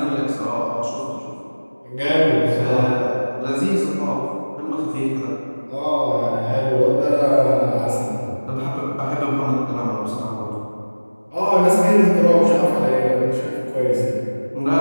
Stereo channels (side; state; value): both; inverted; correlation -1.00